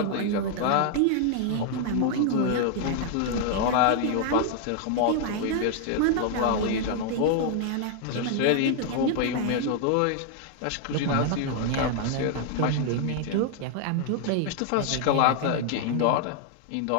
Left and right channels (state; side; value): different; both; correlation 0.00